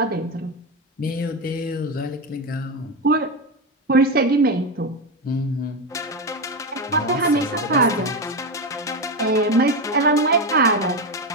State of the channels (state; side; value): normal; both; correlation 0.13